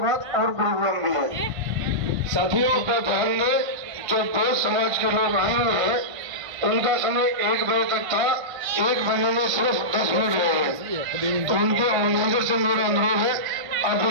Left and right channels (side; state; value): left; late; 1.5 ms